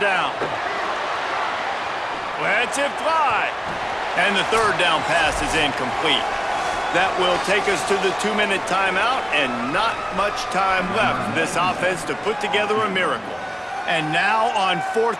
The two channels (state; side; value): identical; both; correlation 1.00